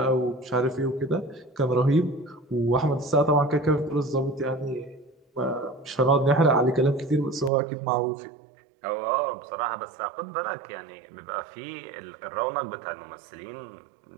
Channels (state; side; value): drops out; left; at 7.5 s